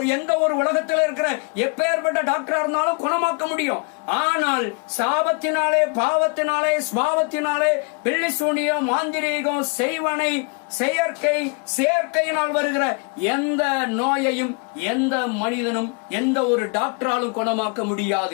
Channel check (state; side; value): quieter; right; 33.2 dB